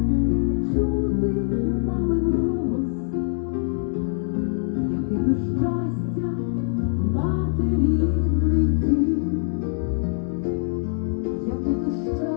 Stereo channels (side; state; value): right; silent; digital silence